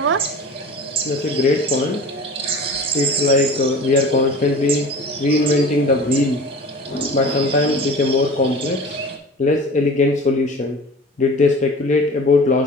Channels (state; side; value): normal; both; correlation 0.39